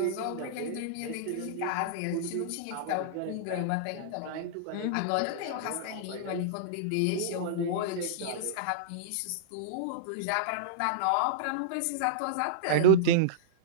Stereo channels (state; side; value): different; both; correlation -0.03